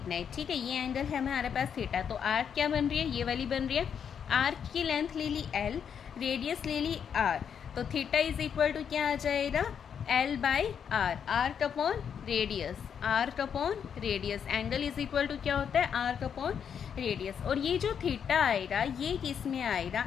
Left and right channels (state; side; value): quieter; right; 7.7 dB